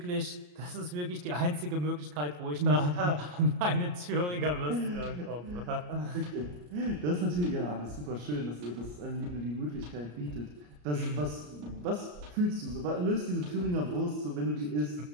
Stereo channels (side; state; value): left; late; 34 ms